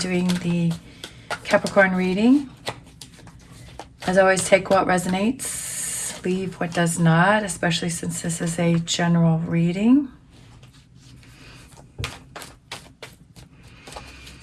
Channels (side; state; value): both; identical; correlation 1.00